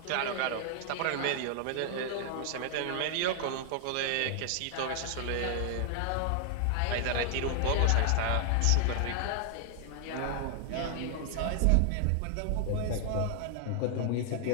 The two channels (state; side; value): different; both; correlation 0.00